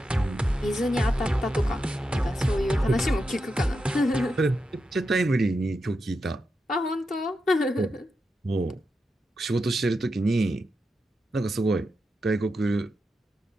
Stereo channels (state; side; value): normal; both; correlation 0.87